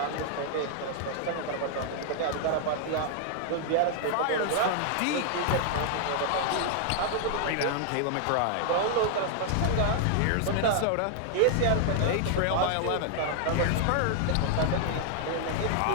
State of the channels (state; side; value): different; both; correlation -0.01